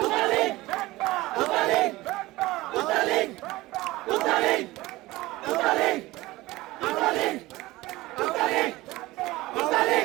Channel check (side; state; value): left; quieter; 19.2 dB